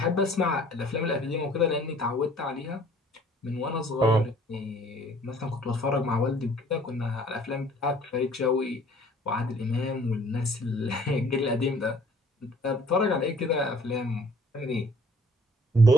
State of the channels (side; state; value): both; normal; correlation 0.56